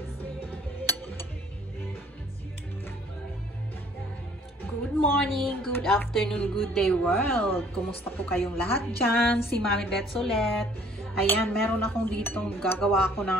morning, good afternoon, good day world. Kumusta po kayong lahat dyan? Si Mami Bets ulit. Ayan, meron akong dito gagawa ko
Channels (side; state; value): both; normal; correlation 0.57